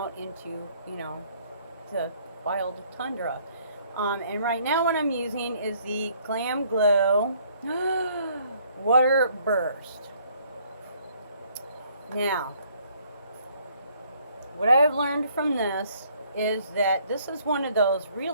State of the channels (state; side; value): inverted; both; correlation -0.63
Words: into, you know, the wild tundra. And right now what I'm using is the Glam Glow Water Burst. Now, what I've learned from this is that this is one of those